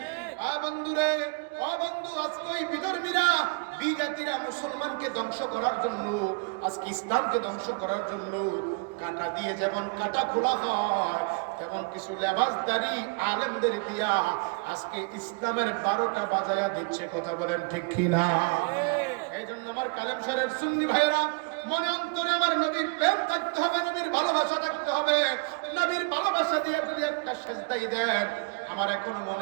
বন্ধুরে, বন্ধু, আজকে ওই বিধর্মীরা, বিজাতিরা মুসলমানকে ধ্বংস করার জন্য, আজকে ইসলামকে ধ্বংস করার জন্য কাটা দিয়ে যেমন কাটা খোলা হয়, তেমন কিছু লেবাসদারি আলেমদের দিয়া আজকে ইসলামের 12টা বাজায়া দিচ্ছে। কথা বলেন ঠিক কিনা? এই জন্য আমার কালেমশারের সুন্নি ভাইরা, মনে অন্তরে আমার নবীর প্রেম থাকতে হবে, নবীর ভালোবাসা থাকতে হবে। নবীর ভালোবাসা দিয়ে যদি একটা সেজদাই দেন, আমার এখনো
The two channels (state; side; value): quieter; left; 32.1 dB